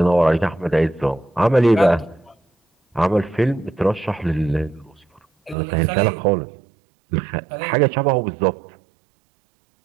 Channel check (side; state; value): left; drops out; at 5.6 s